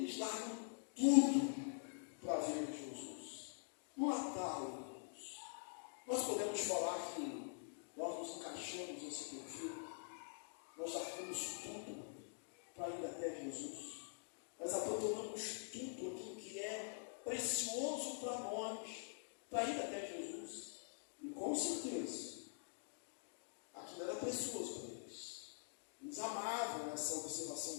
largam tudo para ver Jesus. No Natal, nós podemos falar que nós nos encaixamos nesse perfil, nós largamos tudo para ir até Jesus. Nós abandonamos tudo aquilo que é precioso para nós, para ir até Jesus. E com certeza, aquilo era precioso para eles. Eles amavam essa observação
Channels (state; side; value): silent; right; digital silence